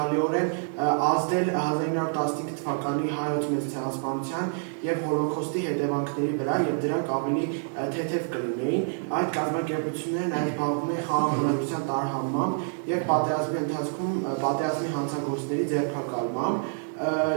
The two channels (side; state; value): left; silent; digital silence